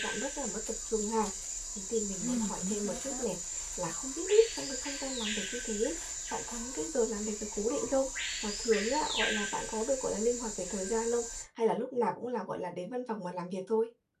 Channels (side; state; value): both; identical; correlation 1.00